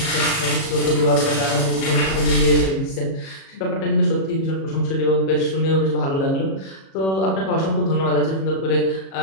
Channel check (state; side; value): late; right; 37 ms